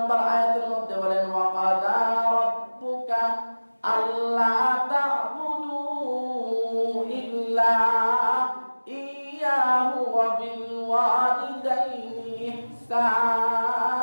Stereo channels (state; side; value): inverted; both; correlation -1.00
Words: আয়াতের মধ্যে বলেন ওয়া কাযা রাব্বুকা আল্লা তা'বুদু ইল্লা ইয়াহু ওয়া বিল ওয়ালিদাইনি ইহসানা।